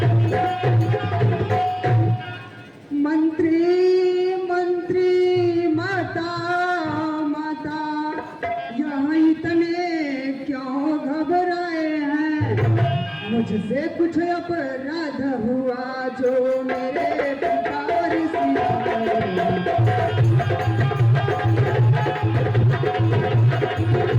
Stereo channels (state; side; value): identical; both; correlation 1.00